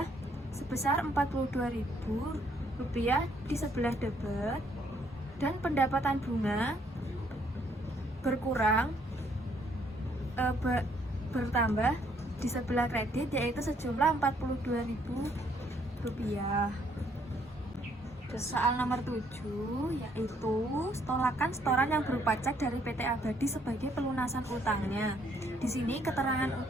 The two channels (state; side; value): normal; both; correlation 0.68